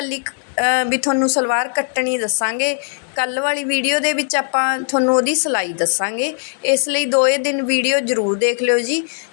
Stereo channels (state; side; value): silent; right; digital silence